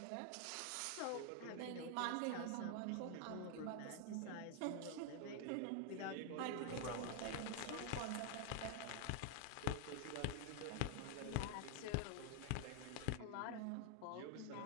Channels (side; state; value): both; different; correlation 0.00